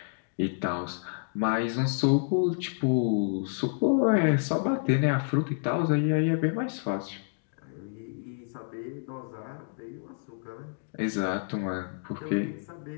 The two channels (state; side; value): silent; right; digital silence